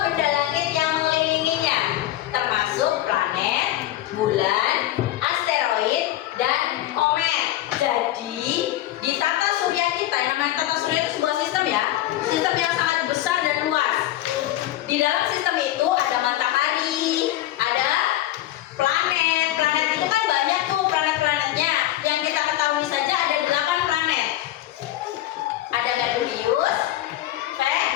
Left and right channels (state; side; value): quieter; right; 14.3 dB